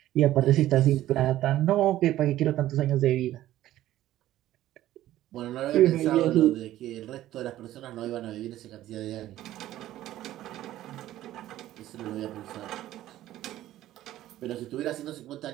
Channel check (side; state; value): left; quieter; 14.0 dB